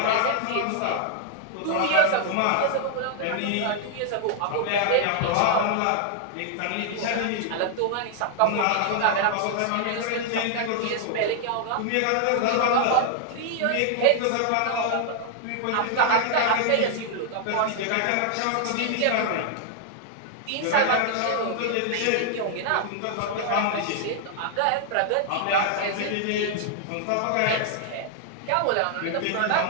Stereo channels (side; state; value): both; different; correlation 0.00